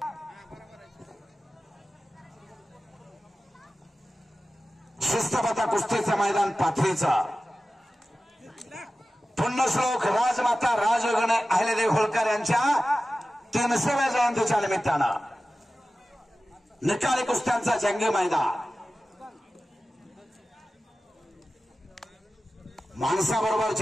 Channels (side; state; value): both; normal; correlation 0.95